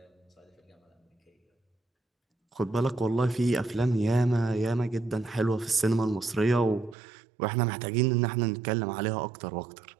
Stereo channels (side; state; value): left; drops out; at 7.0 s